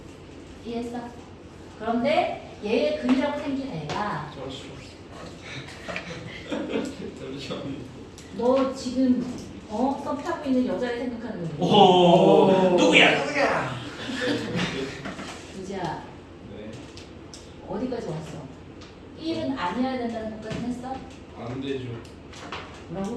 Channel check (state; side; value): identical; both; correlation 1.00